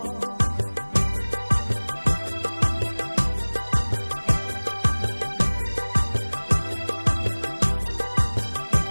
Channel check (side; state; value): both; inverted; correlation -1.00